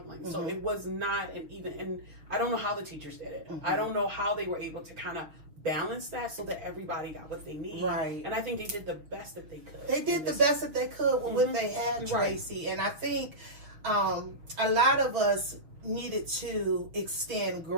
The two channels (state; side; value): late; left; 6.4 ms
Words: So it was not and I don't know how the teachers did it. I don't know how they were able to kind of balance that so that everybody got what they need. Right. And I think they did the best that they could. They did the best that they could with what they had, Tracy. And I think a lot of us needed to extend